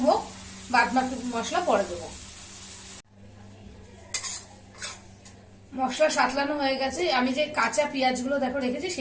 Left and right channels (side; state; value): both; identical; correlation 1.00